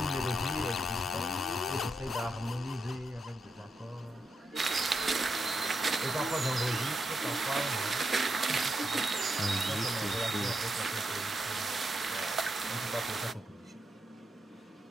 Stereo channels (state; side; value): normal; both; correlation 0.83